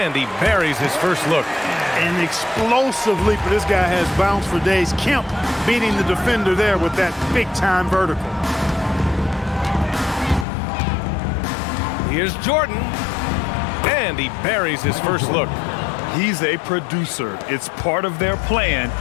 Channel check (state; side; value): drops out; right; at 10.5 s